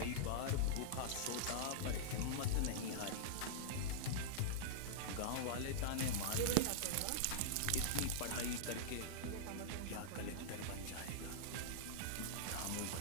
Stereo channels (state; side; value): different; both; correlation -0.02